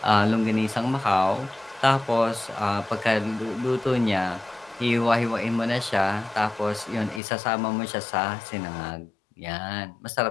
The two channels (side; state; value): right; drops out; at 7.2 s